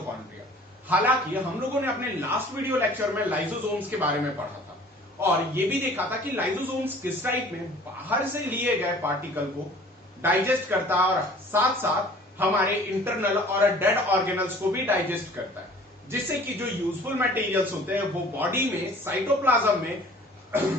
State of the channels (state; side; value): normal; both; correlation 0.49